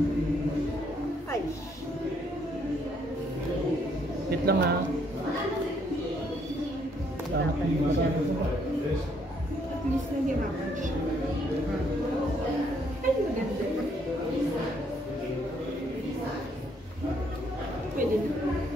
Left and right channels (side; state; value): both; normal; correlation 0.69